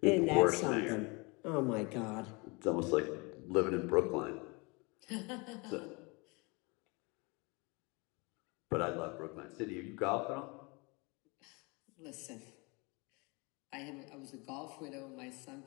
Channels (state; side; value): quieter; right; 28.5 dB